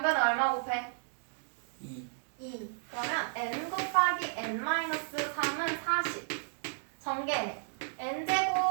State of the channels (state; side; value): silent; left; digital silence